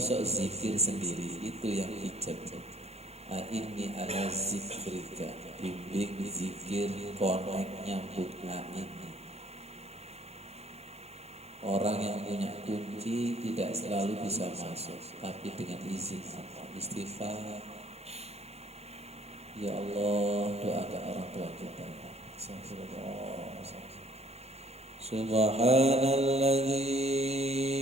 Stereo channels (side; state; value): left; late; 0.31 ms